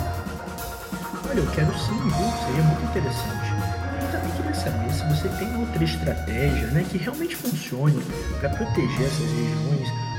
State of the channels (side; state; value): both; identical; correlation 1.00